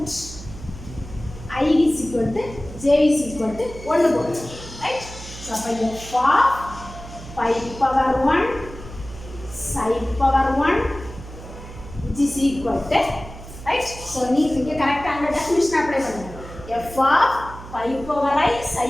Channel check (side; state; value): right; noise; hum, 14 dB below the sound